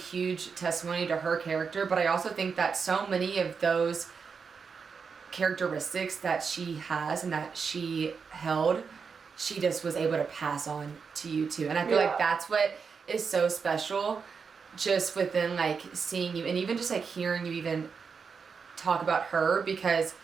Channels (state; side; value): quieter; left; 5.7 dB